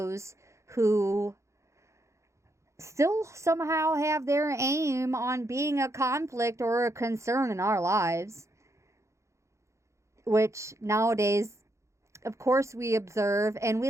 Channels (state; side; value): late; left; 0.14 ms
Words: who still somehow have their aim on being a conflict or a concern in our lives. Which nowadays, of course, we observe and we